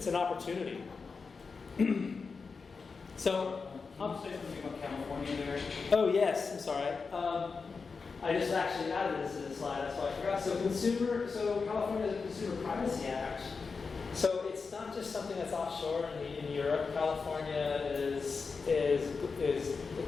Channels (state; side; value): quieter; right; 4.8 dB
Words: an opportunity. So, Can you say something about California there? Oh yes, I'm sorry. I just actually added this to the slide, that's why I forgot. So California has a Consumer Privacy Act. So it's it's not just something that's offshore in Europe. California is